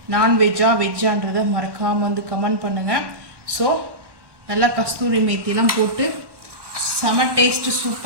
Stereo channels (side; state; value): left; late; 1.2 ms